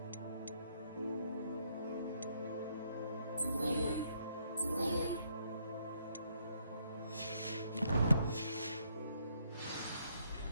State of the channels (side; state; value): both; inverted; correlation -0.72